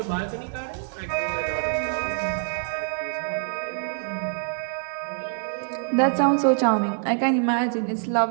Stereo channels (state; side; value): silent; left; 61 dB below the other